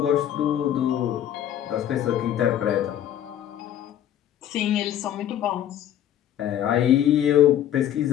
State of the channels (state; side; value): quieter; right; 11.0 dB